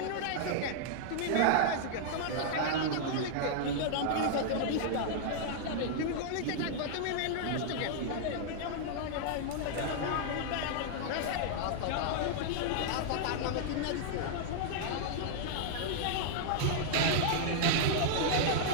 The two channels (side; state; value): both; different; correlation -0.01